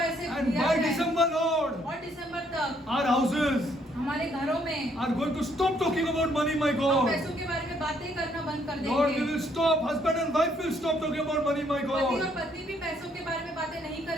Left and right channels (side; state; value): both; normal; correlation 0.69